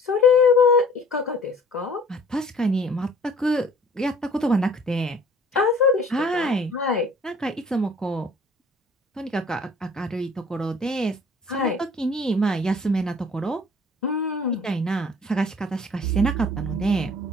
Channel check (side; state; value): both; normal; correlation 0.52